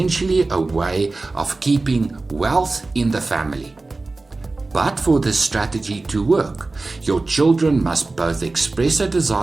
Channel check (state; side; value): quieter; left; 3.4 dB